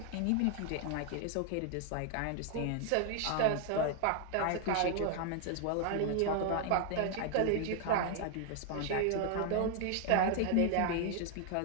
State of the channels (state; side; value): different; both; correlation 0.00